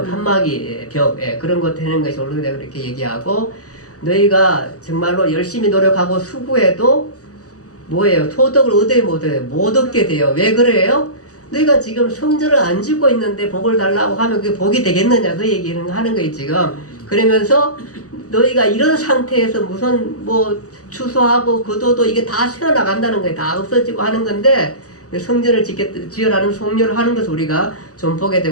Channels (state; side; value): late; right; 0.66 ms